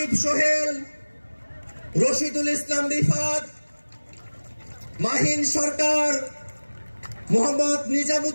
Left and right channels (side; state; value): both; inverted; correlation -1.00